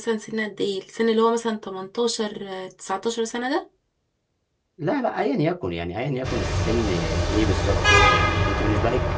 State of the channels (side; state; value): both; identical; correlation 1.00